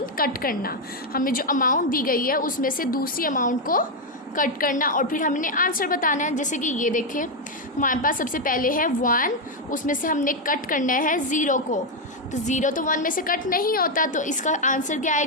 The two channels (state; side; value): normal; both; correlation 0.03